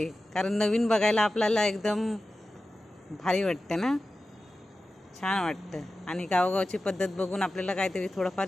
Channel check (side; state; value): both; normal; correlation 0.94